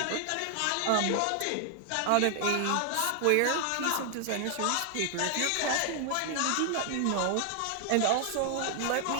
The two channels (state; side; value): different; both; correlation 0.00